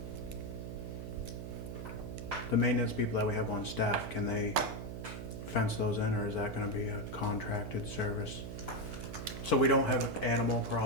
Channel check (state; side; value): noise; right; hum, 7 dB below the sound